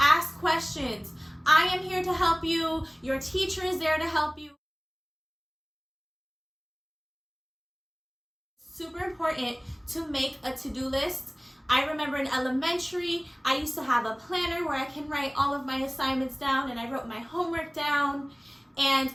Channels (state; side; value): identical; both; correlation 1.00